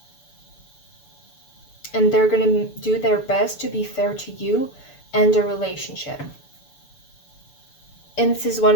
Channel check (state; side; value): late; right; 6.9 ms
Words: And they're gonna do their best to be fair to you and the relationship. And this is one